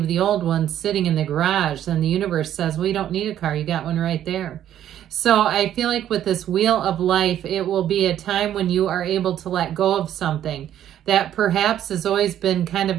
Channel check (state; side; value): quieter; left; 11.1 dB